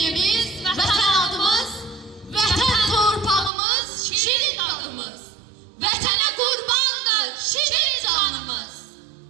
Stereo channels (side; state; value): left; drops out; at 3.5 s